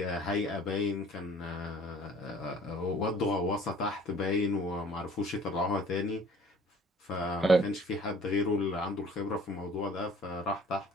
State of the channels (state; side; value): normal; both; correlation 0.52